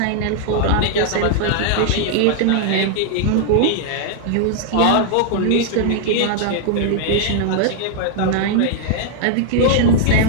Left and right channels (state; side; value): different; both; correlation 0.00